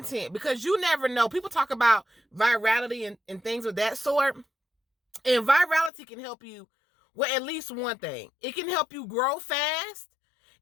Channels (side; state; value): right; drops out; at 5.9 s